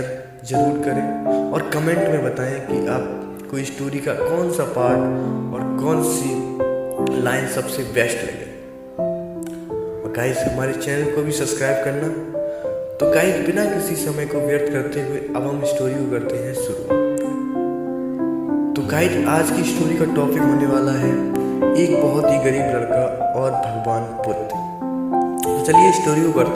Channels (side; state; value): both; identical; correlation 1.00